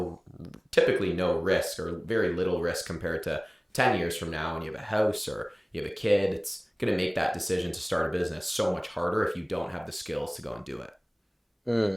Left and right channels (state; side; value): identical; both; correlation 1.00